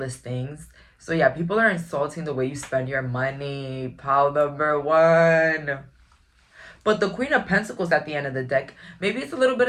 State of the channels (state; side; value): identical; both; correlation 1.00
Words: things. So yeah, people are insulting the way you spend your money. Pile number one. But the Queen of Pentacles at the end of the deck, maybe it's a little bit